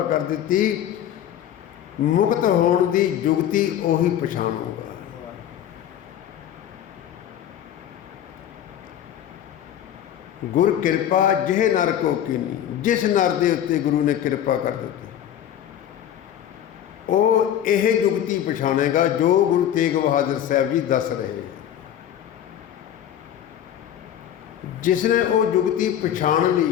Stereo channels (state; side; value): quieter; right; 10.5 dB